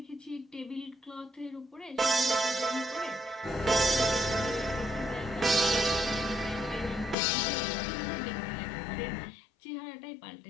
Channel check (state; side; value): drops out; right; at 7.2 s